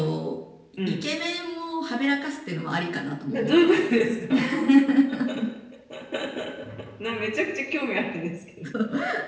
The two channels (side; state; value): both; identical; correlation 1.00